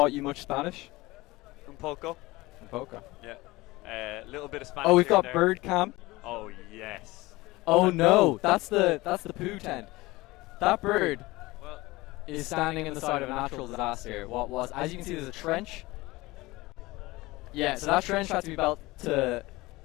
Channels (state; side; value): quieter; right; 20.7 dB